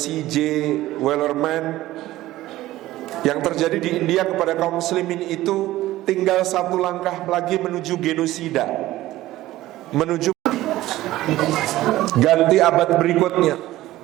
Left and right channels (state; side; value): quieter; left; 16.0 dB